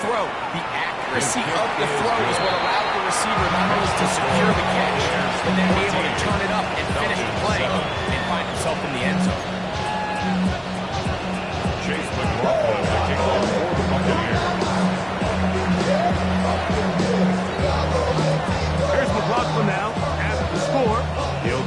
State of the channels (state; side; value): identical; both; correlation 1.00